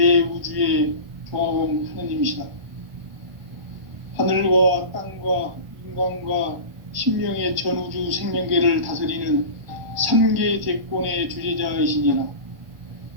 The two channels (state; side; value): late; left; 1.5 ms